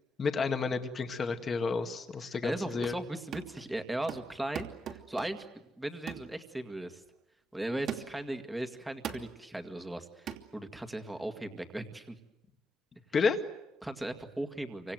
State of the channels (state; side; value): normal; both; correlation 0.84